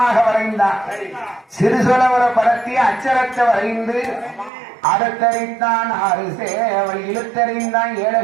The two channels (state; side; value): drops out; left; at 4.5 s